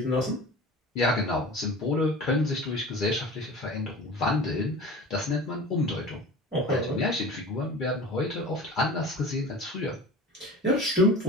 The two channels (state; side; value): normal; both; correlation 0.37